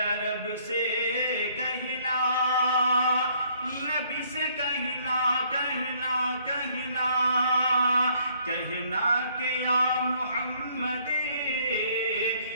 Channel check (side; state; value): both; inverted; correlation -0.64